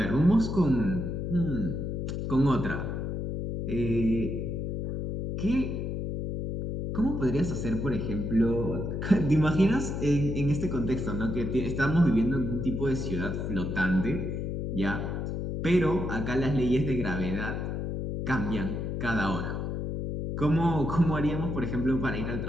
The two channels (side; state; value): left; noise; hum, 3 dB below the sound